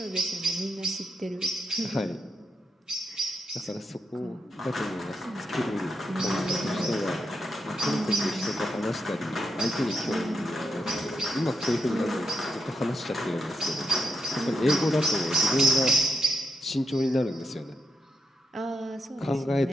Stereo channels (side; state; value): both; normal; correlation 0.83